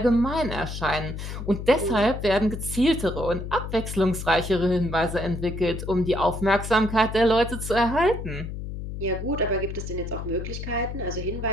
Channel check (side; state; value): left; noise; hum, 7 dB below the sound